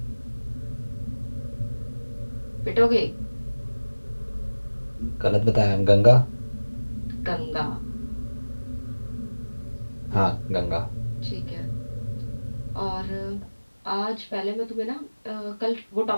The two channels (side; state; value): both; inverted; correlation -1.00